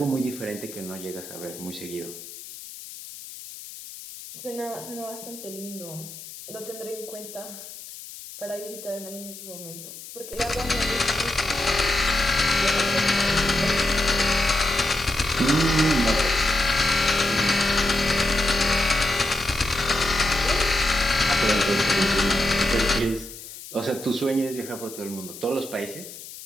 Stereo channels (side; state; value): left; noise; hiss, 14 dB below the sound